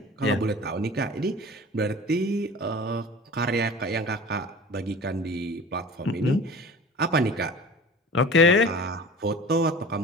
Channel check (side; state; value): both; normal; correlation 0.39